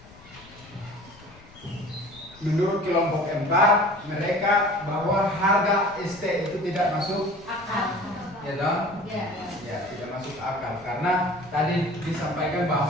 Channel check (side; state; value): left; noise; rumble, 23 dB below the sound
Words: Menurut kelompok 4, mereka bahwa harga ST itu tidak masuk Akal. ya dong? Ya. Ya, tidak masuk akal karena tadi disampaikan